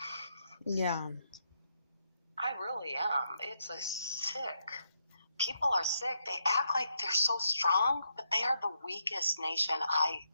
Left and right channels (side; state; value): both; inverted; correlation -0.79